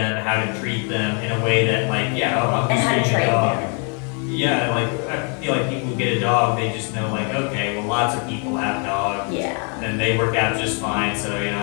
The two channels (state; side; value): quieter; right; 38.3 dB